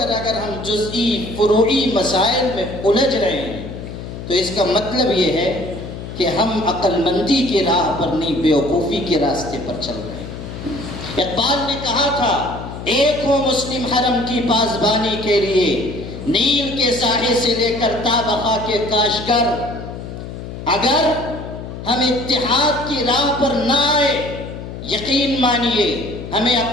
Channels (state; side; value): noise; left; hum, 10 dB below the sound